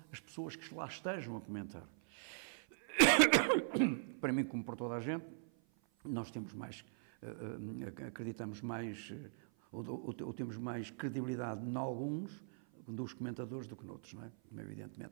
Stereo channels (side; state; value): left; silent; 51 dB below the other